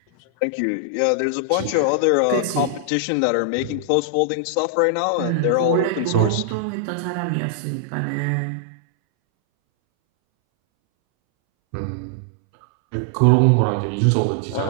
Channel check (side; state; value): both; different; correlation -0.01